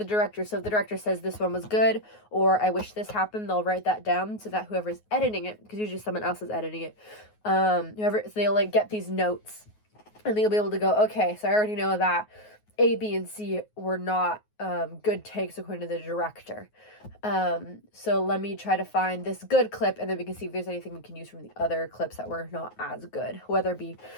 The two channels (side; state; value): right; late; 9.4 ms